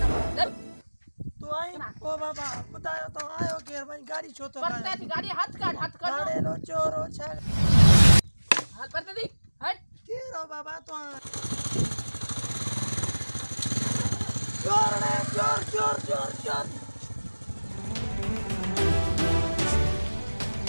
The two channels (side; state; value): both; inverted; correlation -1.00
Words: तो आई ओ बाबा बतायो तो आयो के भाई गाड़ी छो तो पड़ता थी गाड़ी हाथ काट गाड़ी लो चोरो छ हाल पड़ता थी हट के रो बाबा तो चोर रे चोर चोर चोर चोर